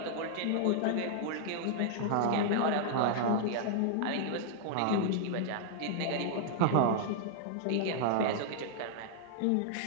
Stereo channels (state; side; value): different; both; correlation -0.01